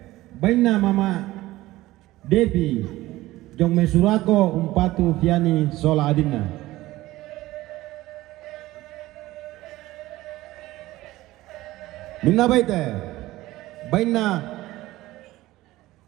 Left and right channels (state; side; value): quieter; left; 17.3 dB